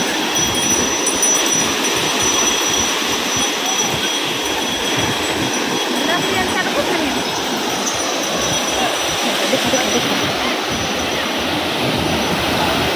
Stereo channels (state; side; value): identical; both; correlation 1.00